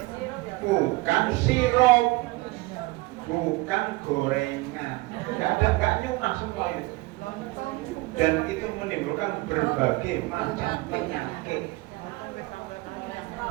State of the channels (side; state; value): left; quieter; 22.1 dB